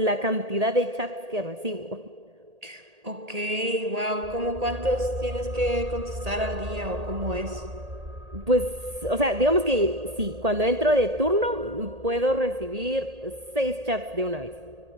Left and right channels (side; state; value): left; late; 1.8 ms